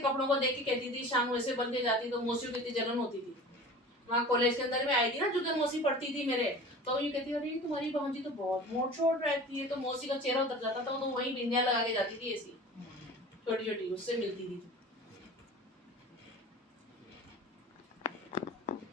को देख के कहती थी, शाम को ऐसे बन के जाती, तो मौसियों की इतनी जलन होती थी। वहाँ कॉलेज के अंदर में आई थी ना, जुगन मौसी पढ़ती थी मेरे, तो ये कहती अरे तुम्हारी भांजी तो बहुत मोट छोट रहती है, तो मौसी का चेहरा उतर जाता था, तो वही बिंदिया लगा के जाती थी ऐसी छोटी छोटी, उससे मिलती थी।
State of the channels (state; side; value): normal; both; correlation 0.38